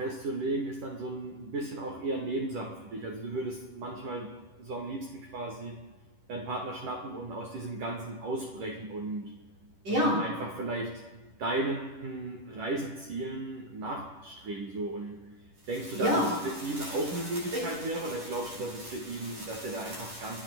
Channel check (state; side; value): late; left; 10 ms